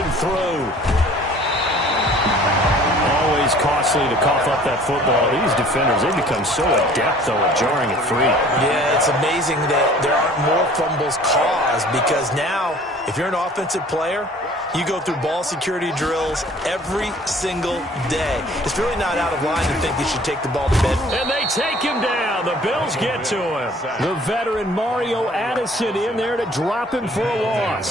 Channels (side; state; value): both; normal; correlation 0.52